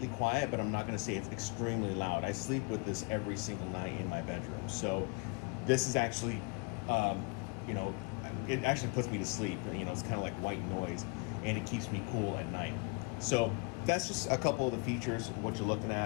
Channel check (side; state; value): right; quieter; 31.2 dB